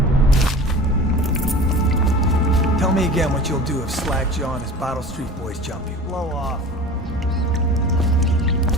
Tell me again what you'll do if Slag Jaw and his Bottle Street boys jump you. Blow off.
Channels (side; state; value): both; normal; correlation 0.37